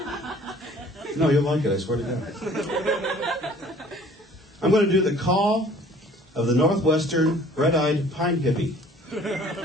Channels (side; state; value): both; normal; correlation 0.52